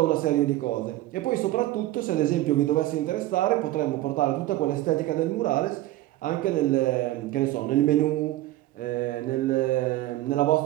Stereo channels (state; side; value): quieter; left; 16.1 dB